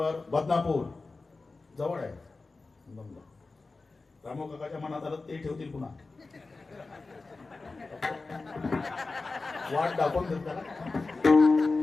बदनापूर जवळ आहे. रामू काकाच्या मनात आलं ते ठेवतील पुन्हा. वाट दाखवून देत त्याला.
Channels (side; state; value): right; quieter; 3.7 dB